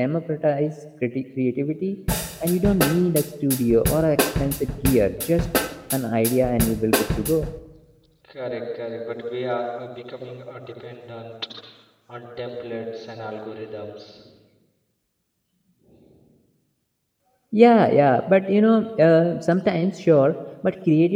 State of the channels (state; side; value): identical; both; correlation 1.00